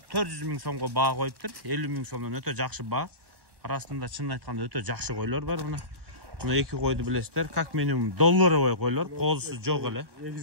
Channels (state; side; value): late; left; 1.1 ms